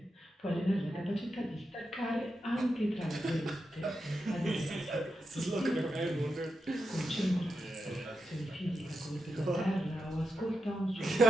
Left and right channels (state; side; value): normal; both; correlation 0.87